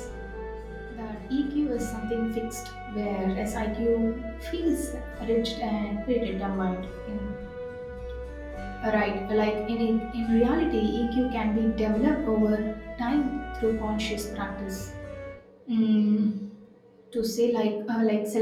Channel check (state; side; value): identical; both; correlation 1.00